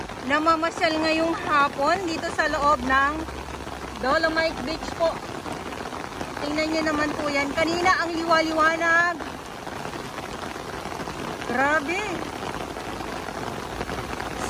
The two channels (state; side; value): identical; both; correlation 1.00